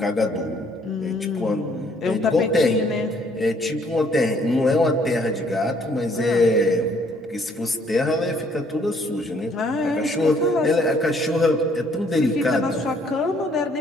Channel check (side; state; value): both; normal; correlation 0.64